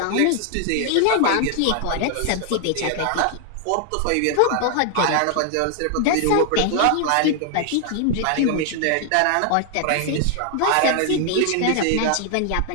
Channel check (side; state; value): both; different; correlation 0.00